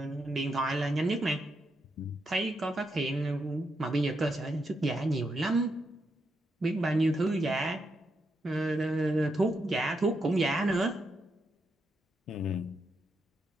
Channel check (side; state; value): both; normal; correlation 0.82